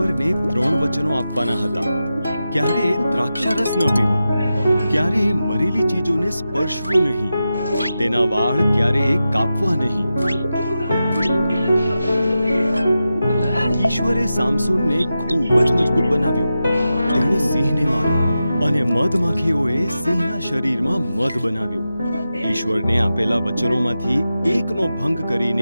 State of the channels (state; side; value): inverted; both; correlation -0.91